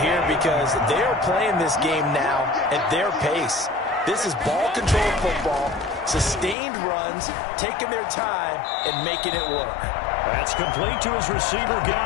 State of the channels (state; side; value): drops out; right; at 6.6 s